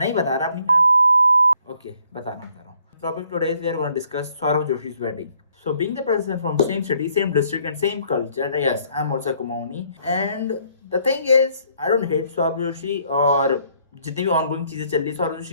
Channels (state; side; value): inverted; both; correlation -0.66